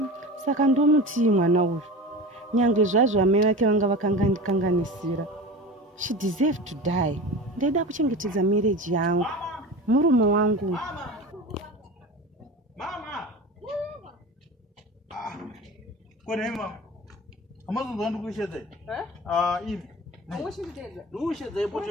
Saka ndomutii mwana uyu. Nyangwe zvazvo mai vake vanga vakanganisira. She deserved to die. Ndaida kuchengetedza marriage yangu. Murume wangu. Mama. Kone mama. Amazonzwa ndikushedza. Ivi. Awushidedza. Ndushedza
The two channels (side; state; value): both; normal; correlation 0.31